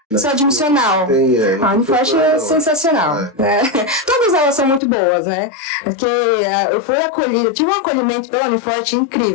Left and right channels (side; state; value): right; drops out; at 4.8 s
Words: seu admissional. A Uniforte é sensacional. Né? Todas elas são muito boas, né? Porque eu fui acolhida, tive um acolhimento pela Uniforte